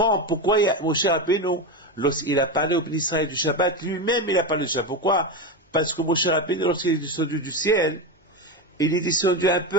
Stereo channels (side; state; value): both; normal; correlation 0.16